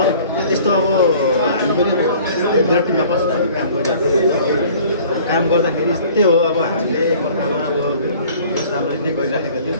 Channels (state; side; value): inverted; both; correlation -0.51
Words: यस्तो अब हामी पनि ब्लड टिममा बसेर काम गरिरहेको थियौँ काम गर्दाखेरि यस्तै हो अब हामीले एकअर्कामा अब राम्ररी नै गरिराखेका थियौँ